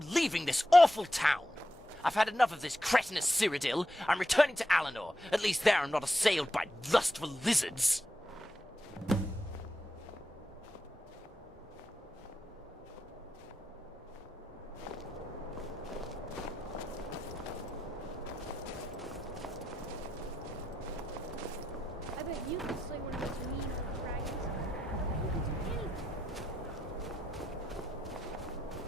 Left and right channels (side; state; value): both; normal; correlation 0.86